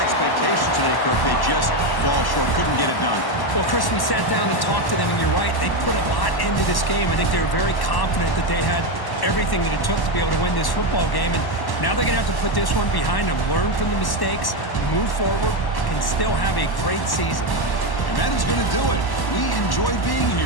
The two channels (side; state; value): right; late; 1.1 ms